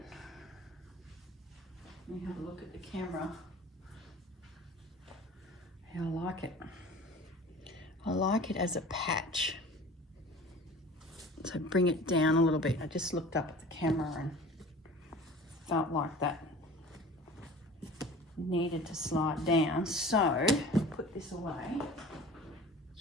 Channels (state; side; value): normal; both; correlation 0.42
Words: Let me have a look at the camera. I like it. I like it as a patch. So bring it down a little bit. I just looked up at the camera and felt like that needed to slide down. So put this away.